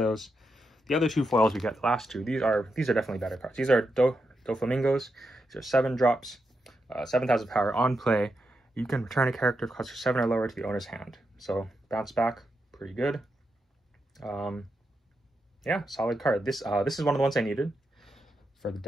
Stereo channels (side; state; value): both; normal; correlation 0.85